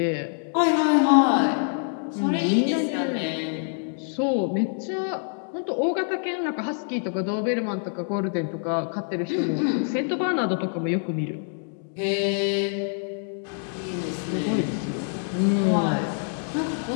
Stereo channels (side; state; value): right; silent; 61 dB below the other